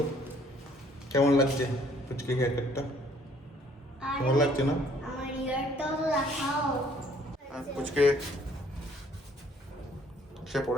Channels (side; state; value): both; normal; correlation 0.61